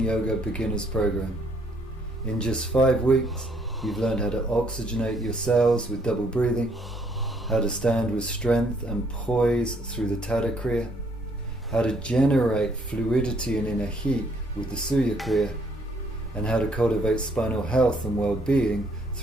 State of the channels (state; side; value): normal; both; correlation 0.67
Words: Beginners program. In just 5 weeks, you've learned how to oxygenate your cells with double breathing, how to stand with strength and poise through the Tada Kriya, how to generate fluidity and inner heat with the Surya Kriya, and how to cultivate spinal health and well-being